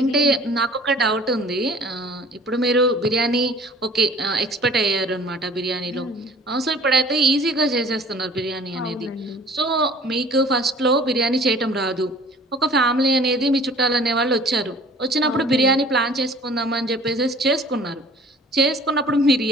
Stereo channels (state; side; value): normal; both; correlation 0.49